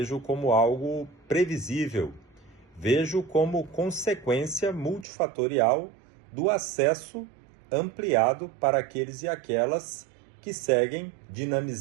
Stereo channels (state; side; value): drops out; left; at 5.1 s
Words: como algo previsível, vejo como consequência multifatorial do acesso ampliado para aqueles e aquelas que seguem